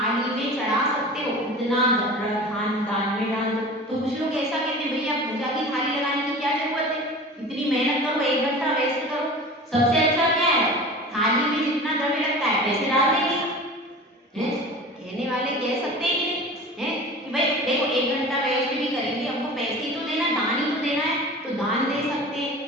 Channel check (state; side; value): normal; both; correlation 0.37